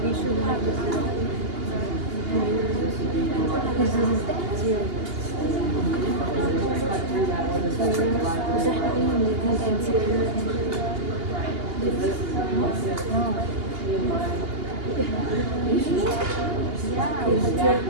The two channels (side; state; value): left; late; 2.8 ms